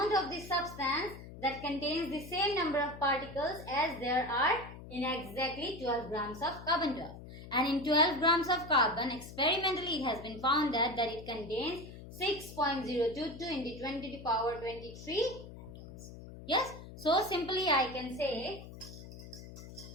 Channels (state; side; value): noise; left; hum, 14 dB below the sound